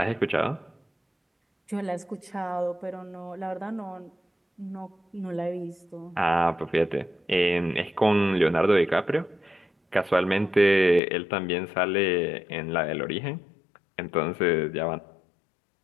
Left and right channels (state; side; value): drops out; right; at 11.0 s